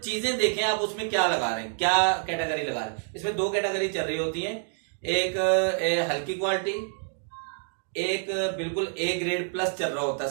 देखें आप उसमें क्या लगा रहे हैं, क्या कैटेगरी लगा रहे हैं। इसमें 2 कैटेगरी चल रही होती है, एक हल्की क्वालिटी, एक बिल्कुल ए ग्रेड प्लस चल रहा होता है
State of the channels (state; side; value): silent; left; digital silence